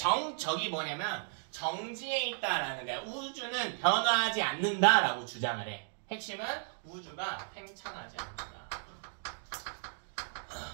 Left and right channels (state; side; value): silent; left; 55 dB below the other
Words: 저기 뭐냐면 정지에 있다라는 거야. 우주는 변화하지 않는다라고 주장을 해. 핵심은 우주가 팽창하지 않는다.